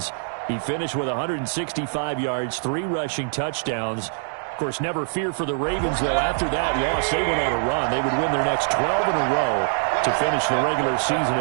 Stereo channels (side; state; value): left; silent; digital silence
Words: He finished with 165 yards, 3 rushing touchdowns. Of course, never fear for the Ravens, though. After that loss, they went on a run. They would win their next 12 in a row to finish the regular season